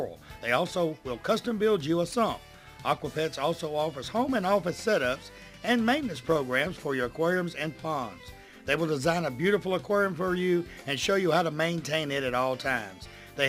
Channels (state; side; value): identical; both; correlation 1.00